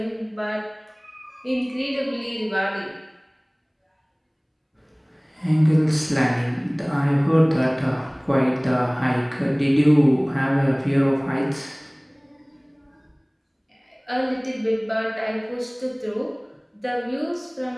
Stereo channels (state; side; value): identical; both; correlation 1.00